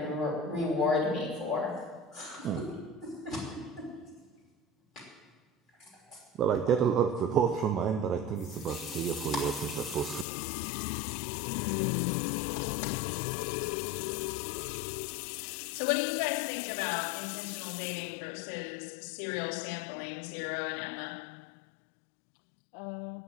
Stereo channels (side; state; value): right; drops out; at 10.2 s